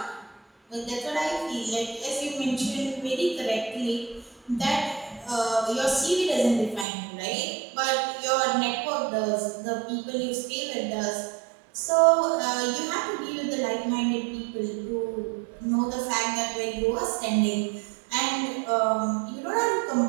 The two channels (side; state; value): left; drops out; at 6.9 s